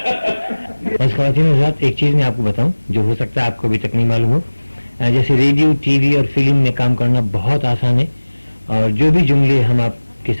बस ख़वातीन हज़रात, एक चीज़ मैं आपको बताऊं जो हो सकता है आपको अभी तक नहीं मालूम हो। जैसे रेडियो, टीवी और फिल्म में काम करना बहुत आसान है, और जो भी जुमले हम आपके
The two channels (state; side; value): inverted; both; correlation -1.00